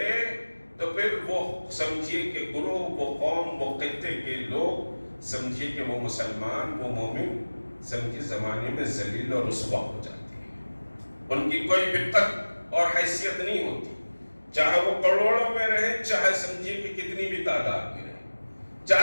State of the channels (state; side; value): inverted; both; correlation -1.00